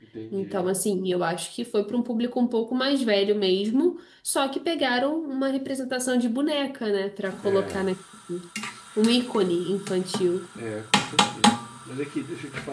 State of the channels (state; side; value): identical; both; correlation 1.00